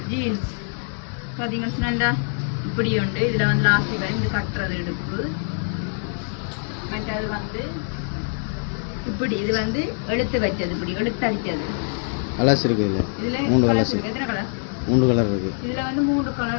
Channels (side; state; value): right; silent; 63 dB below the other